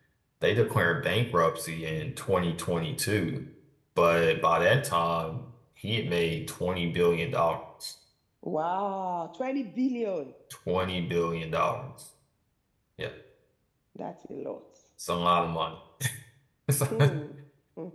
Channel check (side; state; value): both; identical; correlation 1.00